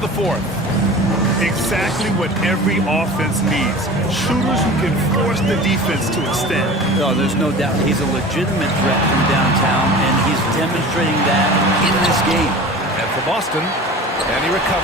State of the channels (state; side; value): normal; both; correlation 0.37